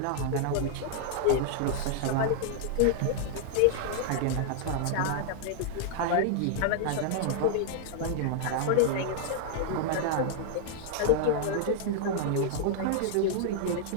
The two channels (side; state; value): both; different; correlation -0.01